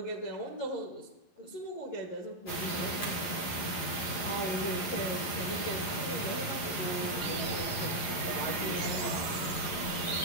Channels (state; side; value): late; right; 11 ms